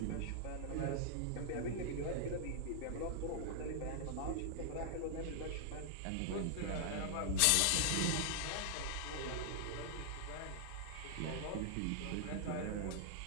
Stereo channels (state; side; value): different; both; correlation 0.00